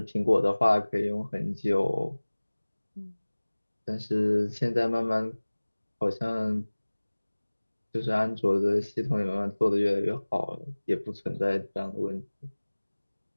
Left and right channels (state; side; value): inverted; both; correlation -1.00